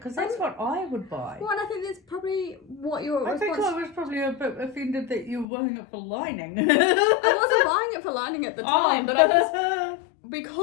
that's what I would buy. Well, and I think that's probably what your response... I think I was probably a bit offended that you were buying it for lining. I wasn't buying it for lining at the time, but I just...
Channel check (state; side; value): drops out; right; at 5.5 s